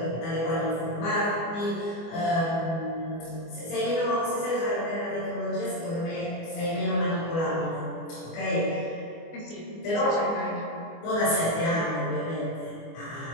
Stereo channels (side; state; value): right; late; 24 ms